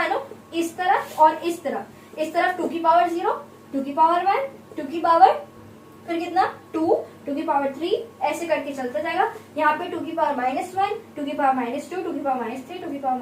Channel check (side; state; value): both; identical; correlation 1.00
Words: इस तरफ और इस तरफ 2 की पावर 0, 2 की पावर 1, 2 की पावर फिर कितना 2, 2 की पावर 3, ऐसे करके चलता जाएगा, यहाँ पे 2 की पावर -1, 2 की पावर -2, 2 की पावर -3, 2 की पावर